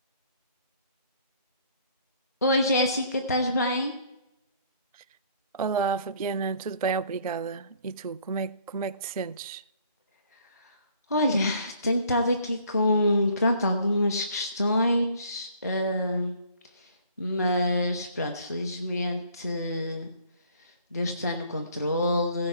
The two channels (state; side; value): inverted; both; correlation -0.59